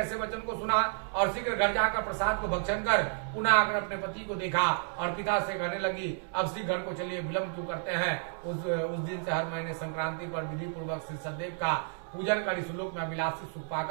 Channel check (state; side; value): silent; left; 57 dB below the other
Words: वचन को सुना और शीघ्र घर जाकर प्रसाद को भक्षण कर पुनः आकर अपने पति को देखा और पिता से कहने लगी, अब शीघ्र घर को चलिए, विलंब क्यों करते हैं। उस दिन से हर महीने संक्रांति पर विधि पूर्वक श्री सत्यदेव का पूजन कर इस लोक में अभिलाषी सुख